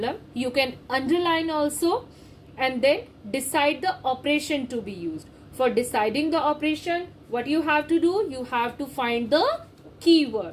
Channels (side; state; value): both; identical; correlation 1.00